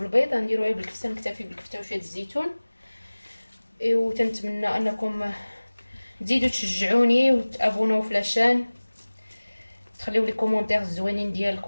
غنديرو غير بالكفته، نكتفي بالكفته وشويه الزيتون. وتنتمنى انكم تزيدوا تشجعوني وتابوناو في لاشين، تخليو لي كومونتير الزوينين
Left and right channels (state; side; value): inverted; both; correlation -1.00